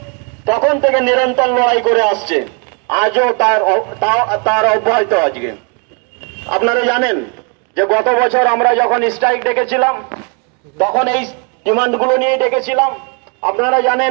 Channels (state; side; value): quieter; left; 35.2 dB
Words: তখন থেকে নিরন্তর লড়াই করে আসছে, আজও তার অব্যাহত। আজকে আপনারা জানেন যে গত বছর আমরা যখন স্ট্রাইক ডেকেছিলাম তখন এই ডিমান্ডগুলো নিয়ে ডেকেছিলাম। আপনারা